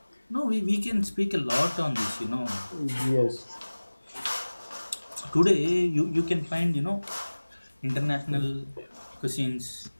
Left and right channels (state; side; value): inverted; both; correlation -1.00